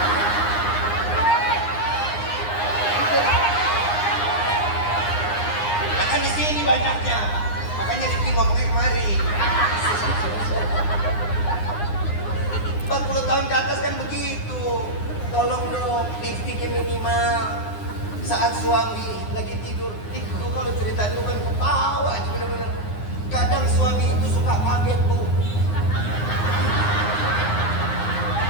Nah kan di sini banyaknya. Makanya Rifki ngomongnya kemari. 40 tahun ke atas kan begitu. Tolong dong, lipstiknya minimal. Saat suami lagi tidur, itu kalau cerita itu kan ketawa aja bener-bener. Kadang suami itu suka kaget bu.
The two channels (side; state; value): right; late; 9.7 ms